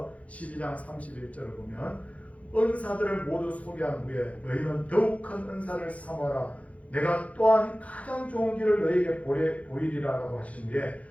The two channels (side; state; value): right; late; 0.066 ms